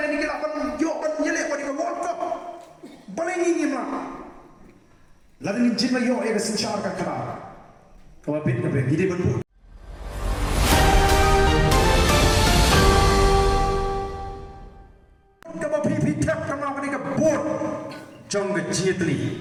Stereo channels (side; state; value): both; identical; correlation 1.00